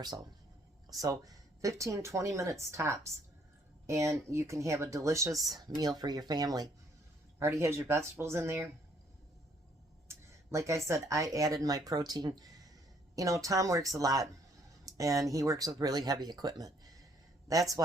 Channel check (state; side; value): normal; both; correlation 0.66